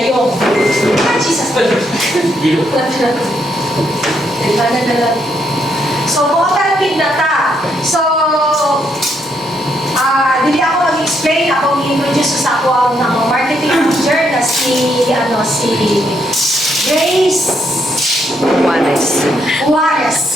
Ah, Jesus! So, cooperative na ta. So, hindi ako mag-explain, ako mag-introduce sa ako ang marketing manager na si Grace Juarez.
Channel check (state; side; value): normal; both; correlation 0.75